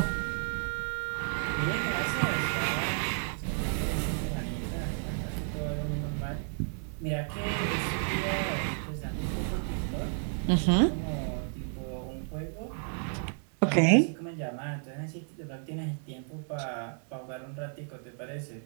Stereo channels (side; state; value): left; silent; 56 dB below the other